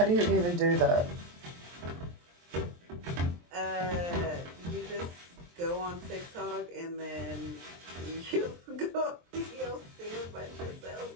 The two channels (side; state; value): left; late; 23 ms